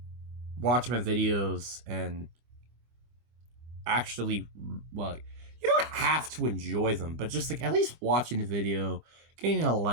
watch my videos and actually, well, you know what? have to enjoy them, but just like at least watching the video, getting a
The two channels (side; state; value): left; late; 25 ms